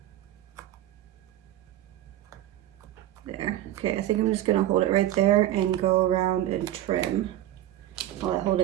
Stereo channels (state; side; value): quieter; left; 13.4 dB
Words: There. Okay, I think I'm just gonna hold it right there and go around and trim while I hold